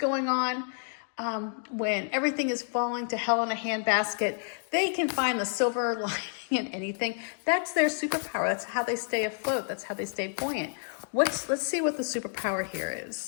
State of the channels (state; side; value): silent; right; digital silence